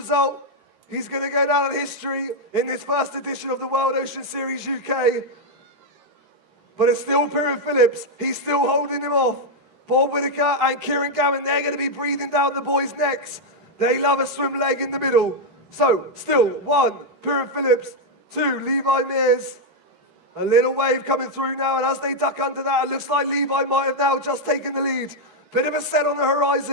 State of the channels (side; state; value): left; late; 13 ms